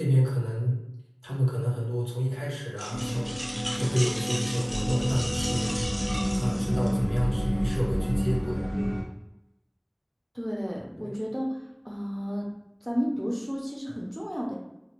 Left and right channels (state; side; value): identical; both; correlation 1.00